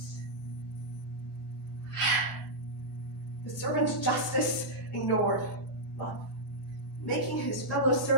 The servant's justice ignored love. Making his fellow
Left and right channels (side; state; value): both; normal; correlation -0.09